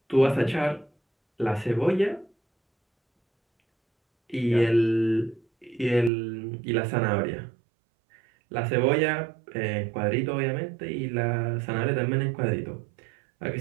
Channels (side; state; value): left; drops out; at 6.1 s